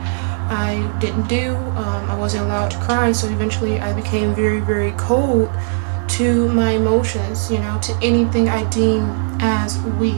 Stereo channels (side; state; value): left; silent; digital silence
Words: I didn't do. I wasn't allowed to cry, so eventually I became very, very cold to my emotions, you know, to anything I deem as